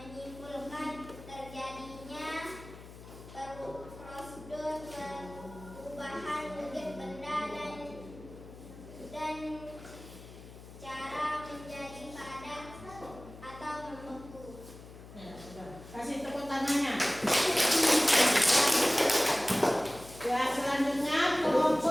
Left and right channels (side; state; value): left; noise; hum, 17 dB below the sound